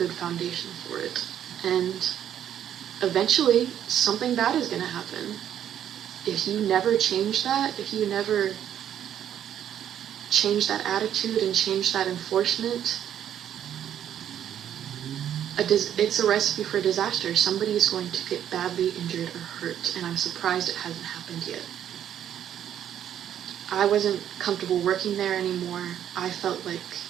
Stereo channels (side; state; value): left; quieter; 10.1 dB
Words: foundation for it. And eventually, something bad is going to happen. If you never change that, if you never change that attitude and change that enforcement, it's a recipe for disaster. Somebody is going to get badly injured or hurt, and I'm surprised it hasn't happened yet. I wasn't comfortable working there anymore. I felt like,